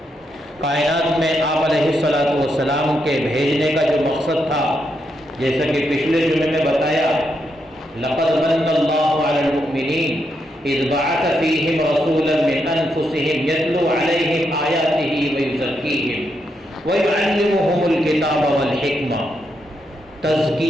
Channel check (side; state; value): both; normal; correlation 0.81